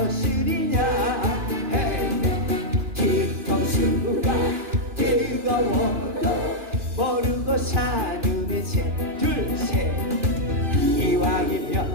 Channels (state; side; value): late; left; 2.5 ms